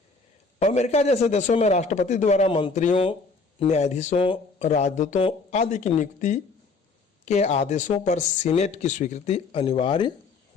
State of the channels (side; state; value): right; quieter; 4.3 dB